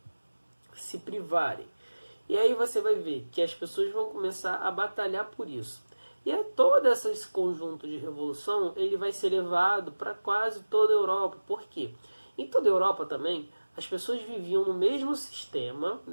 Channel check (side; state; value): both; inverted; correlation -1.00